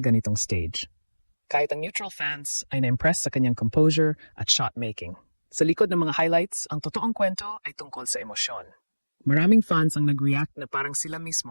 ganitong stage. Kahit ang neutral fans ay na-impress sa kanyang composure at shot-making. Sa likod ng mga highlights, ang totoong kwento ay tungkol sa emosyon. Maraming fans ang nag-react na parang sila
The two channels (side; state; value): both; inverted; correlation -1.00